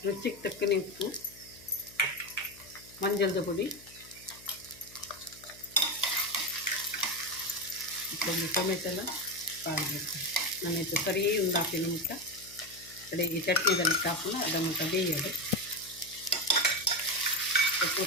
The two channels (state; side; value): noise; left; hum, 23 dB below the sound